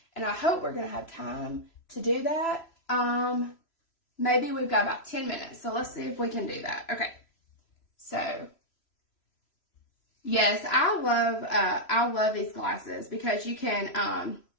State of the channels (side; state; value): right; late; 3.0 ms